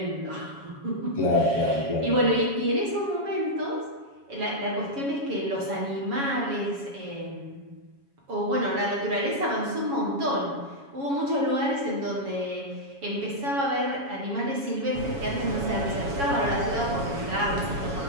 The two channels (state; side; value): late; left; 7.2 ms